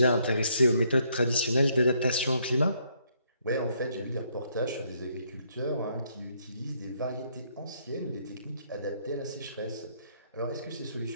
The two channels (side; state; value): both; inverted; correlation -0.71